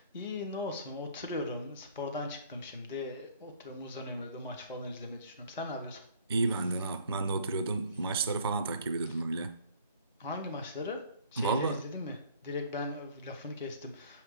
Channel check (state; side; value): inverted; both; correlation -0.55